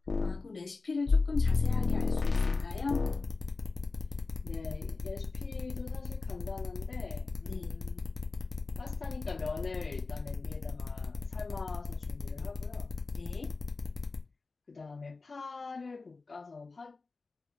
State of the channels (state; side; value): quieter; right; 3.9 dB